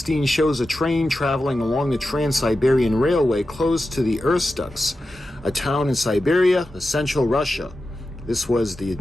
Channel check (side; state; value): both; normal; correlation 0.92